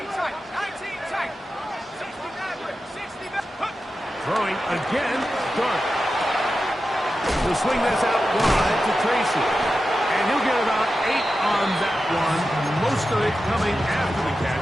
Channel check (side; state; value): both; normal; correlation 0.92